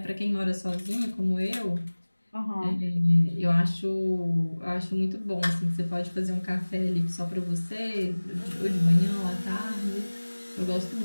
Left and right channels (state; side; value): inverted; both; correlation -1.00